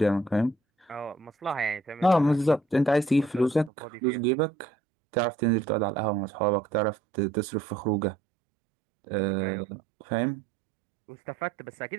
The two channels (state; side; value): drops out; left; at 3.7 s